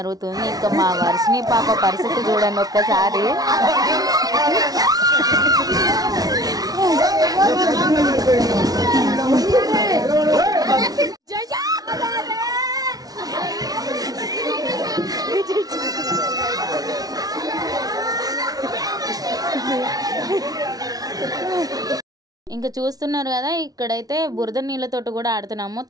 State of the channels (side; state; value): left; late; 0.18 ms